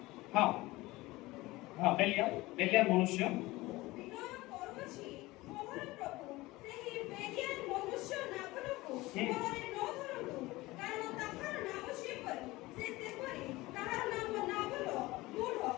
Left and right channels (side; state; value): right; quieter; 20.0 dB